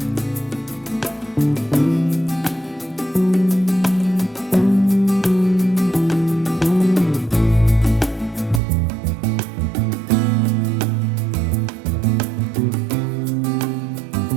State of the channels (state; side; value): drops out; left; at 8.6 s